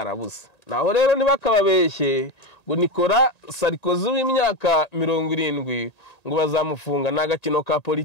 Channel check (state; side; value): late; right; 1.9 ms